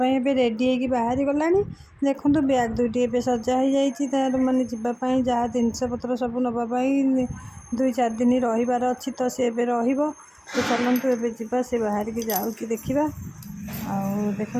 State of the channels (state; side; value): identical; both; correlation 1.00